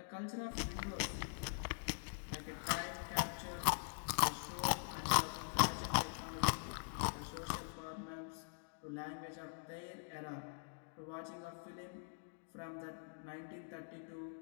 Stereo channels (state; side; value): silent; right; digital silence